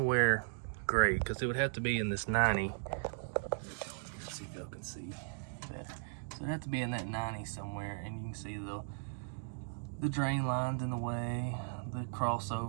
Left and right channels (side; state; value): left; silent; digital silence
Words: great, because it would have to be in this 90. Let's see if y'all can see that. So it'd have to be in that 90 somewhere, and you can see the drain lines in the way, the